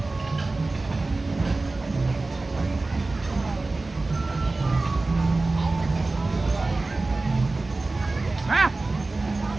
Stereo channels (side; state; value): left; quieter; 3.3 dB